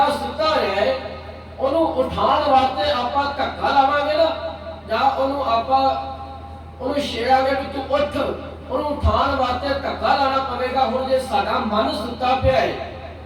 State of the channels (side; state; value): both; identical; correlation 1.00